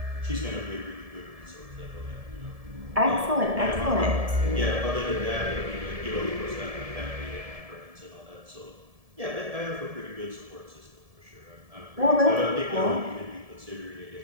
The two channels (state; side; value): late; left; 1.7 ms